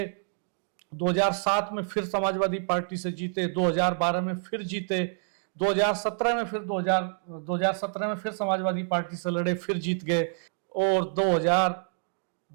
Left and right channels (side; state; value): left; silent; digital silence